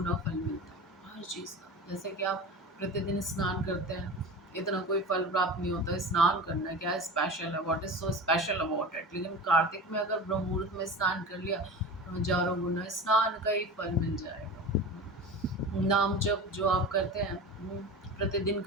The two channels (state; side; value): normal; both; correlation 0.32